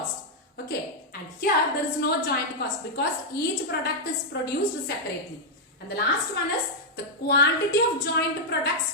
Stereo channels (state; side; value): normal; both; correlation -0.04